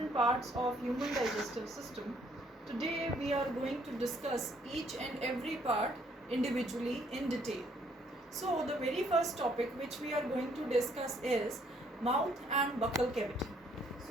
parts of human digestive system. Today we are going to discuss each and every part individually in detail. So the very first topic which we are going to discuss is mouth and buccal cavity.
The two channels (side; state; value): both; normal; correlation 0.66